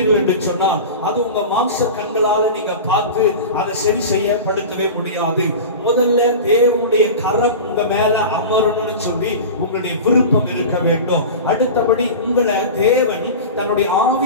என்று சொன்னா அது உங்க மாம்ச கண்களால நீங்க பார்த்து அதை சரி செய்யப்படுத்தவே முடியாது. முதல்ல தேவனுடைய கரம் உங்க மேல அமரணும்னு சொல்லி உங்களுடைய விருப்பம் இருக்க வேண்டும். அடுத்தபடி உங்களை தேவன் தன்னுடைய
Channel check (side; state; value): both; inverted; correlation -0.30